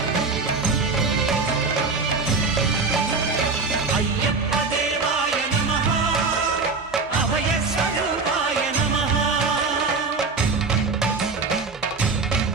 అయ్యప్ప దేవాయ నమః అభయ స్వరూపాయ నమః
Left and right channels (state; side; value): quieter; left; 4.3 dB